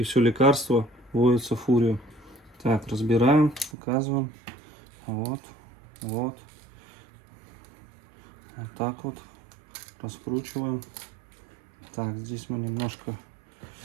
все лекарство вводится в Фурию. Так, разбираем, показываем. Вот, вот. Вот так вот раскручиваем. Так, здесь мы немножко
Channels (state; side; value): drops out; left; at 3.8 s